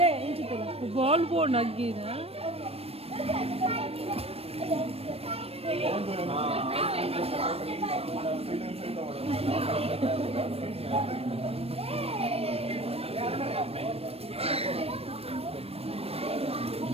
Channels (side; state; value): left; late; 0.28 ms